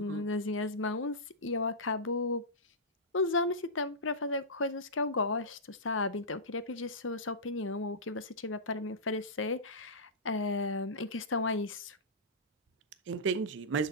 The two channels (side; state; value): both; normal; correlation -0.17